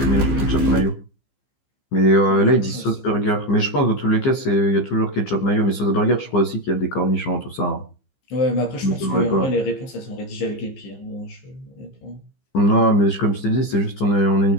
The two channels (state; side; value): late; right; 15 ms